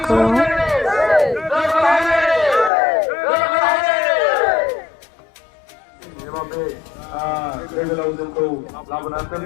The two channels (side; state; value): right; drops out; at 2.7 s